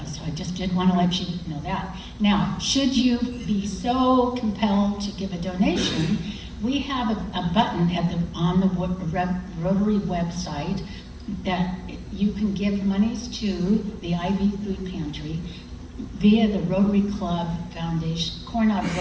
so I just did want to let you know that. Now, should you be so compelled to give a donation, we have a button on the Rotary website that you can give monies to the IB Food Pantry via the Rotary Club Foundation, Coronado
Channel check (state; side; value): identical; both; correlation 1.00